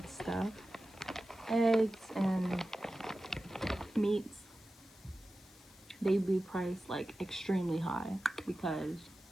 stuff, eggs and meats, they'd be priced like extremely high because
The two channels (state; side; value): noise; left; hiss, 24 dB below the sound